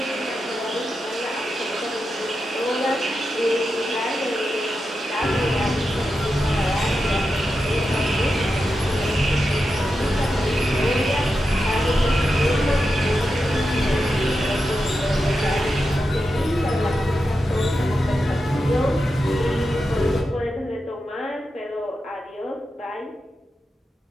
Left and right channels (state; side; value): normal; both; correlation 0.89